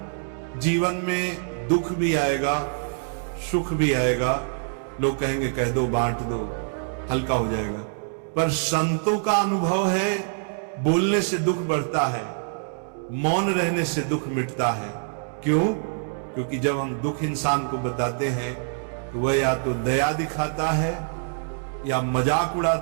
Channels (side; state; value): left; silent; digital silence